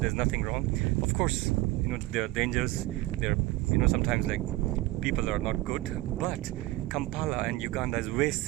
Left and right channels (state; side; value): quieter; left; 18.4 dB